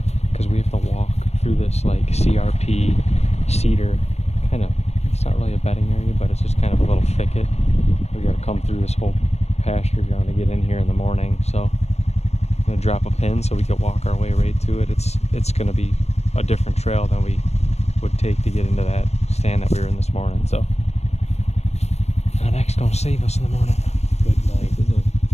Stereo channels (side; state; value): right; late; 0.31 ms